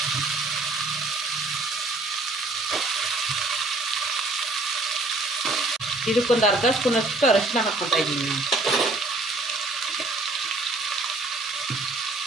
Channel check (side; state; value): left; quieter; 3.0 dB